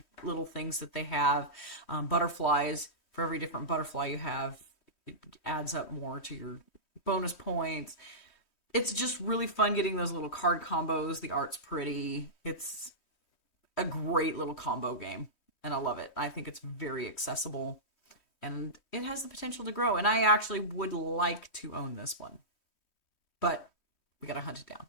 little things that they have. Butterflies, for every different butterfly you have, it adds up more to your bonus points. It's just really fun getting those little card combos. The art's pretty. It's a great little combo game, and I love it. I think it's very accessible, and it has the potential to grow, and I actually would like to own this one. But we gotta hunt it down.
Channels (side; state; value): right; late; 3.1 ms